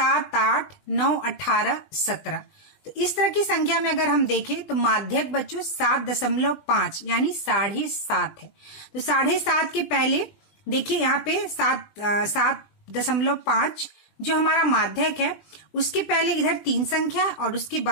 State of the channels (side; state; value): right; late; 20 ms